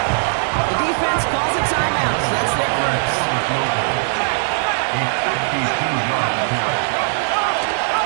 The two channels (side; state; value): left; silent; digital silence